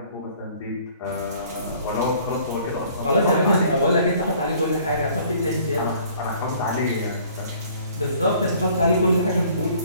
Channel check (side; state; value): both; inverted; correlation -0.55